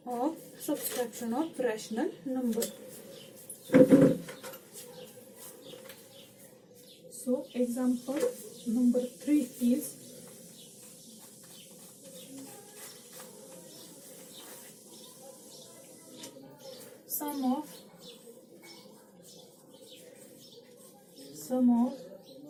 of subtraction of rational number. So example number 3 is sum of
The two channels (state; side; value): identical; both; correlation 1.00